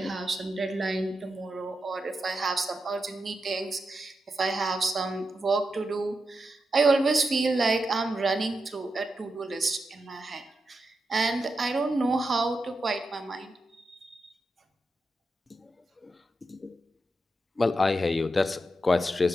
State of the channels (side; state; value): both; normal; correlation 0.87